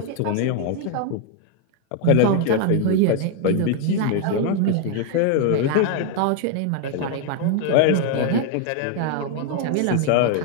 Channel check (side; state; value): both; different; correlation 0.01